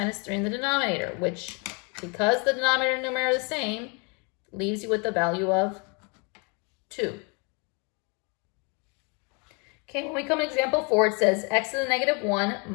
3 in the denominator, which, because the denominator and numerator are the same, leaves you with the value of 2. Okay, when we come to example 4, it says x to the negative 1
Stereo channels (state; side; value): quieter; right; 33.4 dB